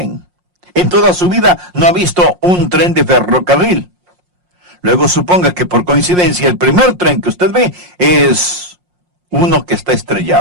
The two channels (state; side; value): late; left; 5.6 ms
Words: En toda su vida no ha visto un tren de ferrocarril. Luego suponga que por coincidencia el primer tren que usted ve es uno que está